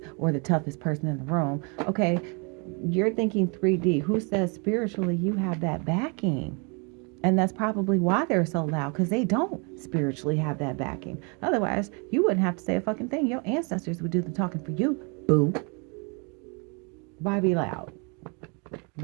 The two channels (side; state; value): left; quieter; 33.9 dB